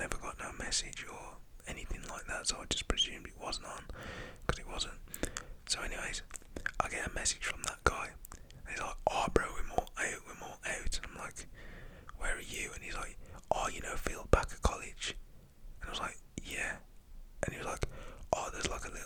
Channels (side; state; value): both; identical; correlation 1.00